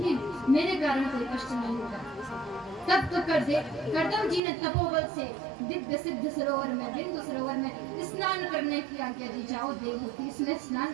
मेरे कारण कोई कष्ट नहीं होगा। तब तो करदम जी ने तपोबल से दिव्य सिद्ध सरोवर में, बिंदु सरोवर में स्नान करने की आज्ञा दी। जाओ देवहूति, इसमें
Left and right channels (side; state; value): left; drops out; at 4.4 s